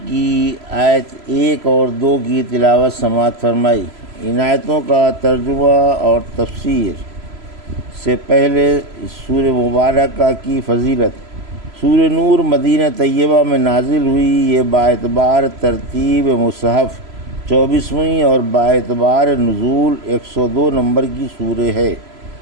کی آیت 1 اور 2 کی تلاوت سماعت فرمائی۔ ان آیتوں کا ترجمہ اور تفسیر سے پہلے سورہ مبارکہ کی فضیلت۔ سورہ نور مدینہ طیبہ میں نازل ہوئی۔ یہ باعتبار ترتیب مصحف 24ویں اور باعتبار نزول 102 نمبر کی سورہ ہے۔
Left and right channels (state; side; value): late; left; 3.0 ms